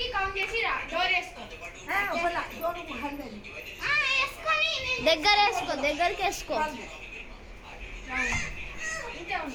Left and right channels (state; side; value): identical; both; correlation 1.00